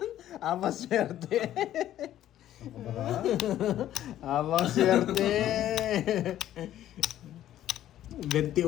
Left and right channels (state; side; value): quieter; right; 12.4 dB